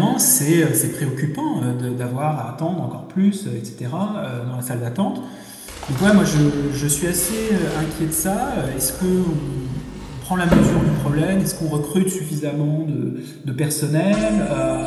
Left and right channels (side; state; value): both; identical; correlation 1.00